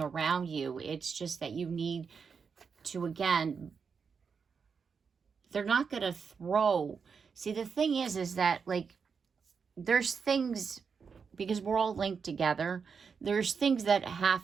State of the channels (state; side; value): quieter; left; 5.9 dB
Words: around you. It's just that you need to, again, they're not going to throw. See, the thing is that, like, there's things, because we're all linked together, there's things that